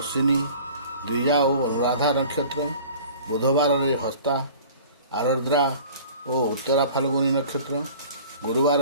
ଅଶ୍ୱିନୀ, ଦ୍ୱିଜା ଓ ଅନୁରାଧା ନକ୍ଷତ୍ର, ବୁଧବାରରେ ହସ୍ତା, ଆରଦ୍ରା ଓ ଉତ୍ତରା ଫାଲ୍ଗୁନୀ ନକ୍ଷତ୍ର,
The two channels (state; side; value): inverted; both; correlation -0.45